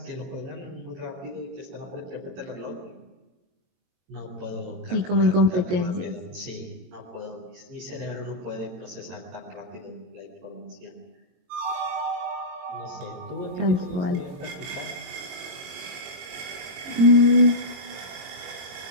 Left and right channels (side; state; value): left; late; 22 ms